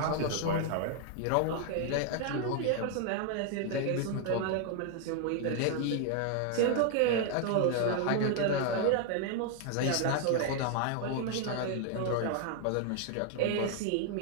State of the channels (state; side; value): different; both; correlation 0.00